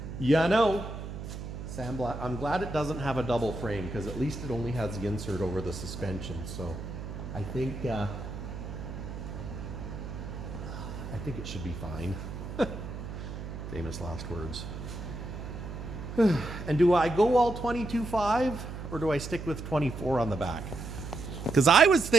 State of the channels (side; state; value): right; noise; hum, 8 dB below the sound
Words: Sam, I'm glad it doesn't have a double frame, because at least it only has the insert over the suspension. So I think it should be fine. Famous last words. And do I go all 22.5 or do I stick with 24 on the back? Because I was